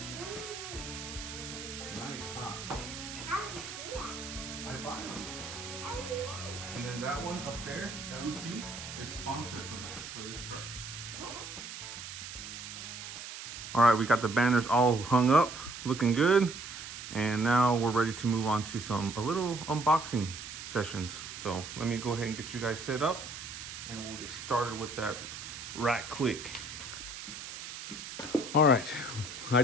Nice, huh? How do you do that? I buy them. How do you do that? And then that one up there, LC, is sponsored for this truck. All right, we got the banners all hung up, looking good. And now we're ready to move on to a little unboxing sessions. So let me go ahead and get you guys set up and we'll get started with that right quick. All right, I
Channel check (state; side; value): noise; right; hiss, 10 dB below the sound